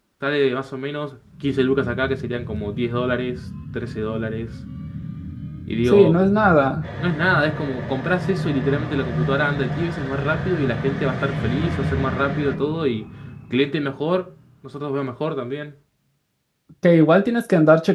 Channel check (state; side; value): identical; both; correlation 1.00